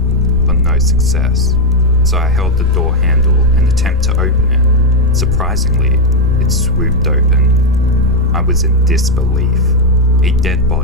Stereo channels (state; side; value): normal; both; correlation 0.03